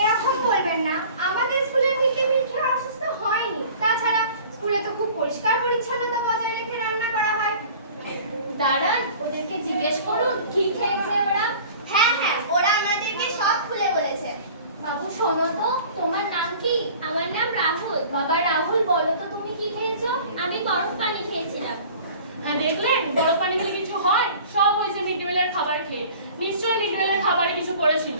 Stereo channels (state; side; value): inverted; both; correlation -0.45